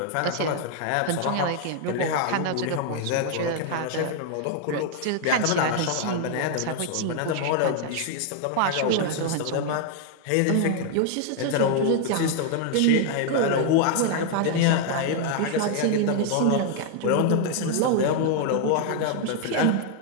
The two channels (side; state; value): both; different; correlation 0.00